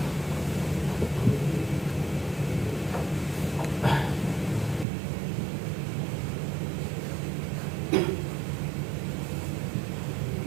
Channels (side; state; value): left; drops out; at 4.9 s